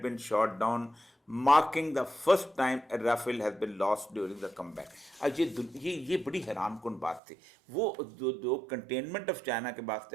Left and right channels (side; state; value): left; drops out; at 7.2 s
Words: been shot down, marking the first time a Rafale has been lost during the combat. अब ये बड़ी हैरानकुन बात थी। वो जो कंटेनमेंट ऑफ चाइना के बाद